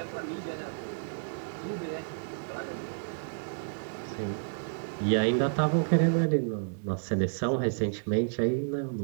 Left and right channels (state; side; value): silent; left; digital silence